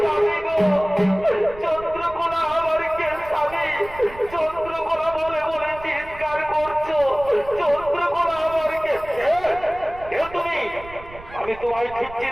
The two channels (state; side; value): noise; right; rumble, 17 dB below the sound